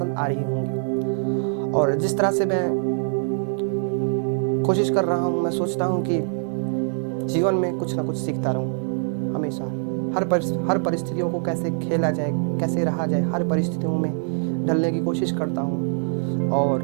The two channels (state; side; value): silent; left; digital silence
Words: आ रही होंगी और जिस तरह से मैं कोशिश कर रहा हूँ, मैं सोचता हूँ कि जीवन में कुछ ना कुछ सीखता रहूँ हमेशा। हर परिस्थितियों को कैसे खेला जाए, कैसे रहा जाए, हर परिस्थितियों में ढलने की कोशिश करता हूँ